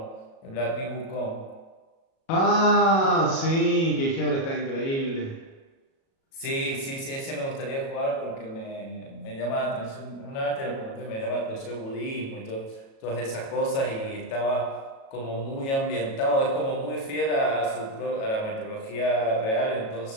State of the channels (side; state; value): right; late; 37 ms